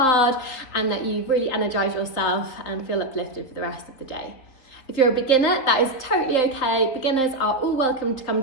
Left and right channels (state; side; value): late; right; 3.8 ms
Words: and that you've really energized yourself and feel uplifted for the rest of the day. If you're a beginner, that is totally okay. Beginners are all welcome to come